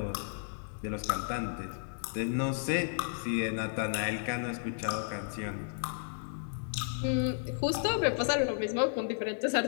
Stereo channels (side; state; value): right; silent; digital silence